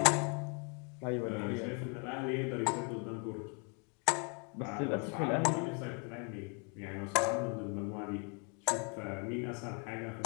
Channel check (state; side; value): quieter; right; 36.7 dB